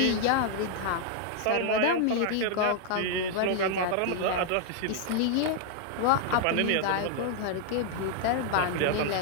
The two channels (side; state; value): both; different; correlation 0.00